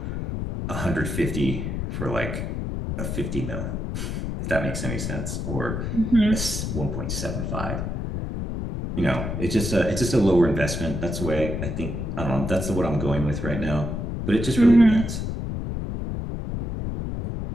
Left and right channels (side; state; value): left; noise; rumble, 3 dB below the sound